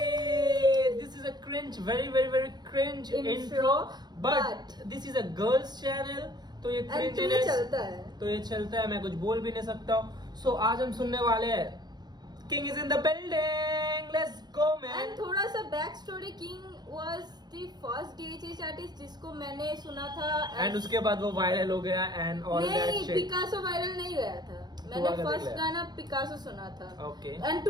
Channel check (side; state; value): left; late; 0.20 ms